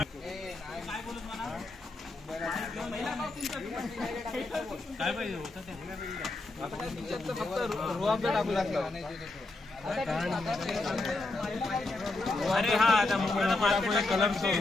काय पाहिजे होतं अरे हा आता कलर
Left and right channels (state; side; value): quieter; right; 3.1 dB